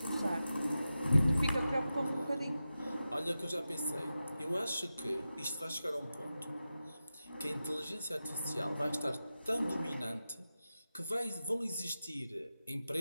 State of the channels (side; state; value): both; inverted; correlation -0.92